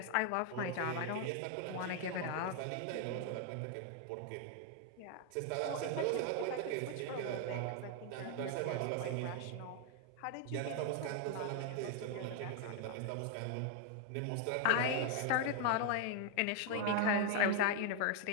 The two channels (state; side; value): different; both; correlation 0.00